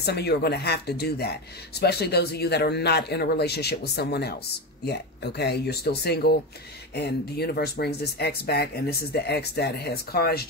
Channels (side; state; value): both; normal; correlation 0.18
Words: Some of you are going to have to do that, especially those of you that are not in a relationship with someone else yet, okay? You're still single, and the universe brings this ex back, and this is the ex that has